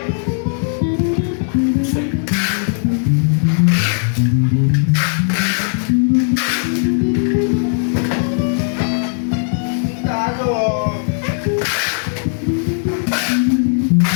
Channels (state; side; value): silent; right; 59 dB below the other